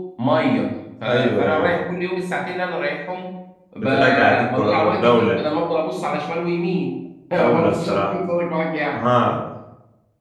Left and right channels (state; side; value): identical; both; correlation 1.00